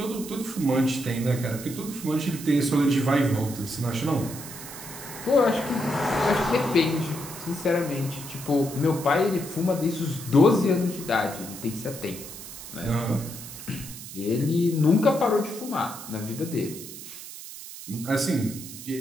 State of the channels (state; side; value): noise; right; hiss, 12 dB below the sound